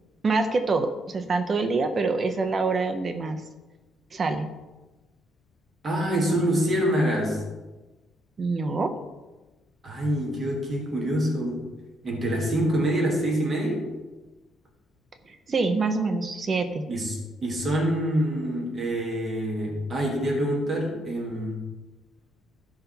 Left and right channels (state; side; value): normal; both; correlation 0.75